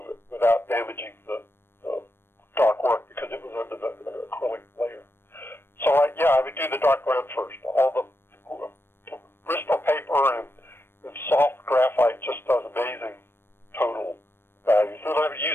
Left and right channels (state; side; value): late; right; 0.11 ms